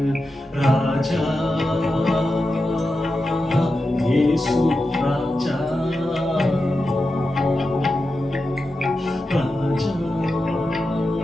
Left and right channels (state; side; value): normal; both; correlation 0.90